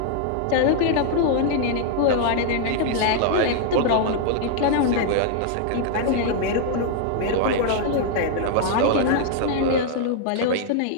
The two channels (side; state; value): both; different; correlation -0.01